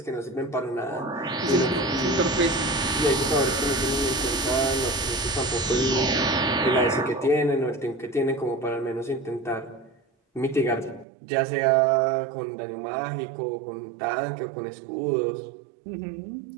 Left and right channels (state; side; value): drops out; left; at 11.1 s